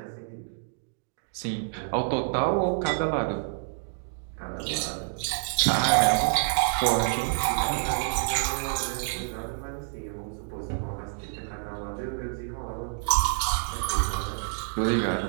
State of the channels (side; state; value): left; silent; 59 dB below the other